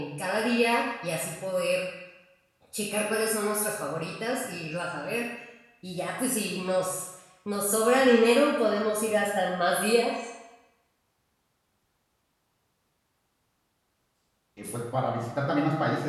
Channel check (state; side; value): identical; both; correlation 1.00